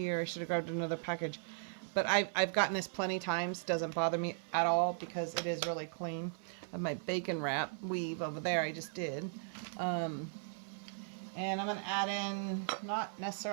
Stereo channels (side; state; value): left; silent; 53 dB below the other